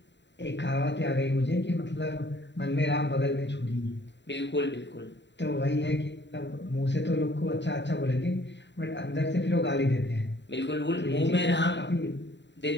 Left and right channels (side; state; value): right; late; 0.52 ms